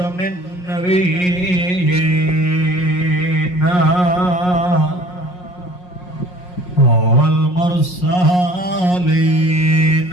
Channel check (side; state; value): right; late; 5.5 ms